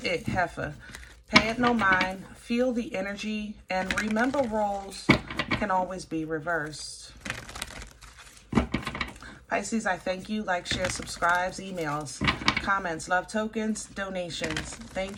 it, heifer. Pay it no mind, feel the energy, and remember roles can always be reversed. Pisces, I thank you. Like, share, subscribes, emails, comments, love tokens, donations.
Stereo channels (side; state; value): both; identical; correlation 1.00